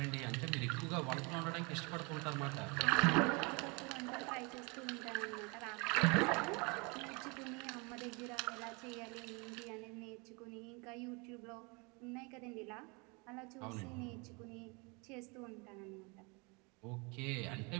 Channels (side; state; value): left; quieter; 29.9 dB